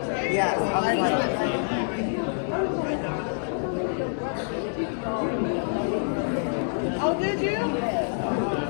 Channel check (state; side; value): silent; right; digital silence